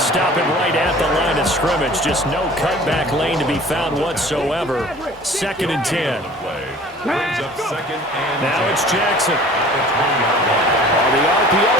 stop him right at the line of scrimmage. Just no cutback lane to be found whatsoever. 2nd and 10. Now it's Jackson. On the RPO,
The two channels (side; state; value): both; normal; correlation 0.46